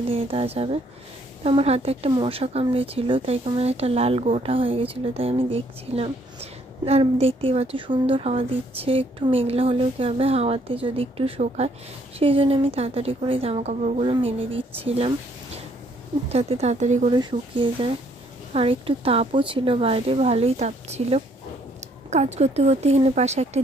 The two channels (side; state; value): both; normal; correlation 0.66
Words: দিয়ে দেওয়া যাবে। তো আমার হাতে একটা মশা কামড়েছিল, তাই কেমন একটা লাল গোটা হয়ে গেছিলো, তাই আমি দেখছিলাম। আর দেখতেই পাচ্ছ সুন্দর হাওয়া দিচ্ছে। একটু মেঘলা হলেও কী হবে, হাওয়াতে যদি একটু শোকায়, সেই জন্য আমি তাড়াতাড়ি করে জামা কাপড়গুলো মেলে দিচ্ছিলাম, যাতে তাড়াতাড়ি করে শুকিয়ে যায়। আর একটু তাপও ছিল বাইরে, ভালোই তাপ ছিল। কাজ করতে করতে এখানে পাশে একটা